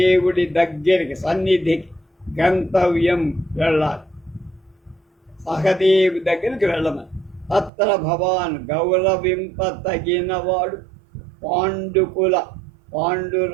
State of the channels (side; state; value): left; drops out; at 7.7 s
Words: దగ్గరికి సన్నిధికి గంతవ్యం వెళ్ళాలి, సహదేవి దగ్గరికి వెళ్ళమని. తత్ర భవాన్ గౌరవింపతగినవాడు పాండుకుల